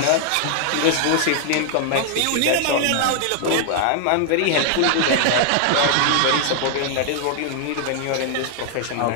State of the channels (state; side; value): different; both; correlation 0.00